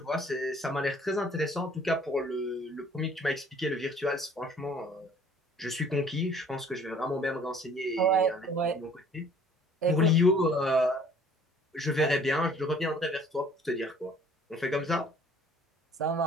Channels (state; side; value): normal; both; correlation 0.55